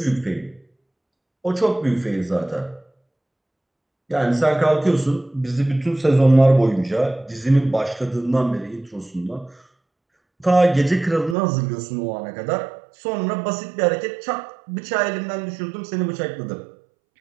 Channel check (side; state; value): left; drops out; at 11.4 s